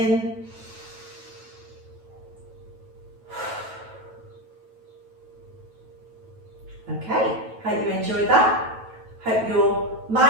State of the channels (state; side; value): late; left; 9.1 ms